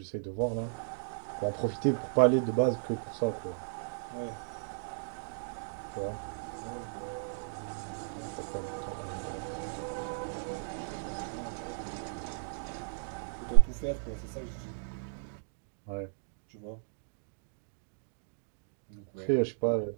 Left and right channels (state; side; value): silent; left; digital silence